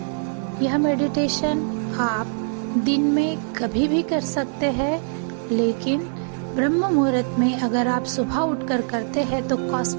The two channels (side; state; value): left; silent; 63 dB below the other